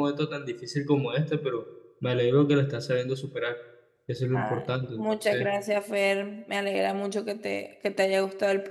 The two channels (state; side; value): identical; both; correlation 1.00